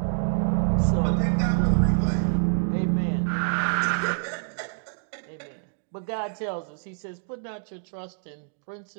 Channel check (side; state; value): left; silent; digital silence